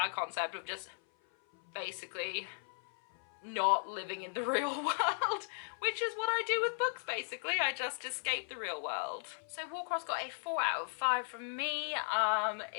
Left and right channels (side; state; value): right; silent; 53 dB below the other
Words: concept of just basically not living in the real world, which is what I do with books basically. I just escape the real world. So Warcross got a 4 out of 5 from me.